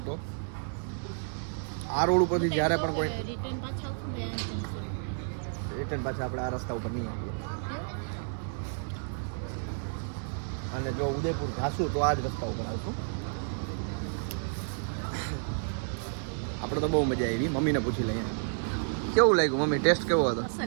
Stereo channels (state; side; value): silent; left; digital silence